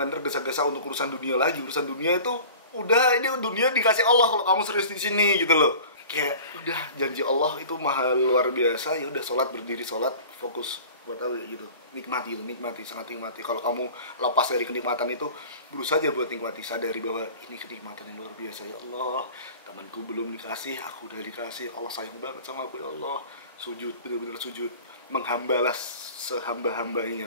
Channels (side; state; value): both; inverted; correlation -0.42